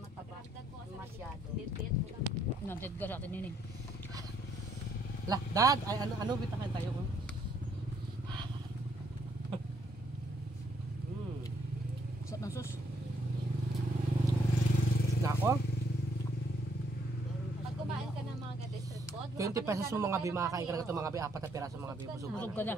Masyado. bit-bit ko lang. Nanted ka sa atin yun. Lah, dad, ay ano bitakan tayo ko. Sarap ng sus. Na ako? Pag kumain ka ng mga ganito street food, 20 pesos mo mga bi, makakain ka na ito mga bi, 4 na piraso mga bi, busog Busog ka ka na.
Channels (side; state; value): both; normal; correlation 0.70